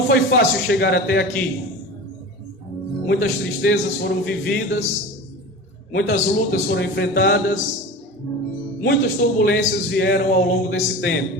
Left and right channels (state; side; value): normal; both; correlation 0.32